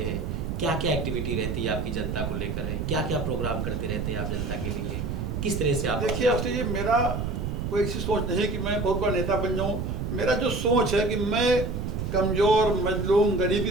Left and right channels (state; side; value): noise; right; rumble, 3 dB below the sound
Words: हैं? क्या क्या एक्टिविटी रहती है आपकी जनता को लेकर है? क्या क्या प्रोग्राम करते रहते हैं आप जनता के लिए? किस तरह से आप? देखिए अवस्थी जी, मेरा कोई ऐसी सोच नहीं है कि मैं बहुत बड़ा नेता बन जाऊँ। मेरा जो सोच है कि मैं कमज़ोर, मजलूम, गरीब की